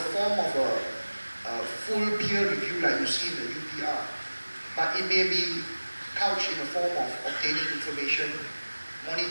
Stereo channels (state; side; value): inverted; both; correlation -1.00